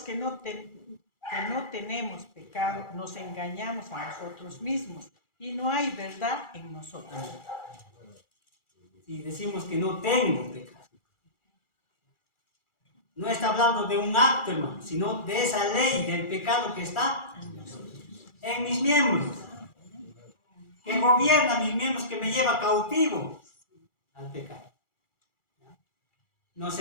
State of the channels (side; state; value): right; late; 2.4 ms